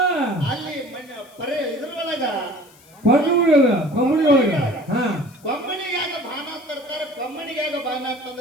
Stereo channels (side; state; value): left; noise; hiss, 27 dB below the sound